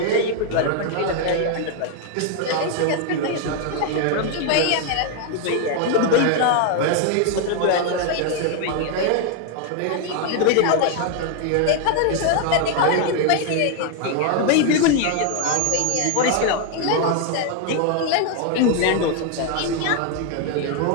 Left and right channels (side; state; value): both; different; correlation 0.01